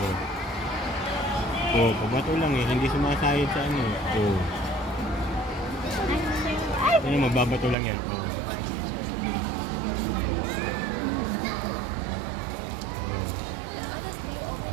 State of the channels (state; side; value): drops out; left; at 7.8 s